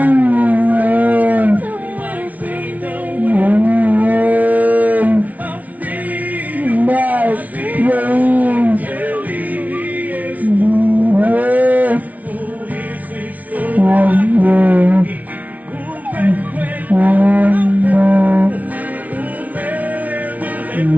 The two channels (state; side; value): late; left; 0.072 ms